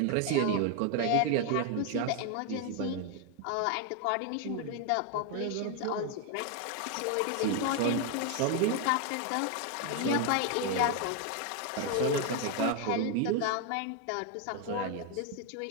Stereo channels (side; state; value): both; different; correlation 0.01